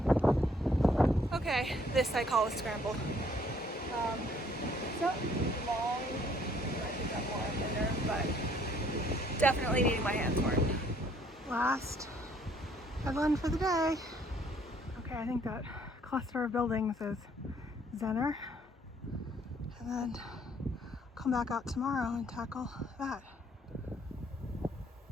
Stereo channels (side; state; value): both; normal; correlation 0.63